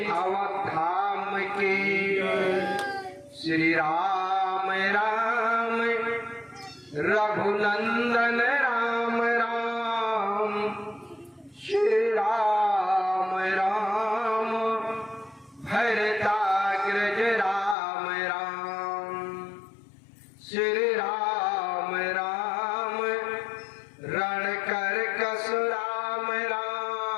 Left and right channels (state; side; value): drops out; right; at 17.8 s